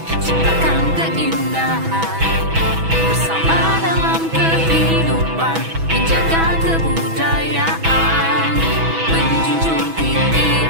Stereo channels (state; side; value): late; left; 6.1 ms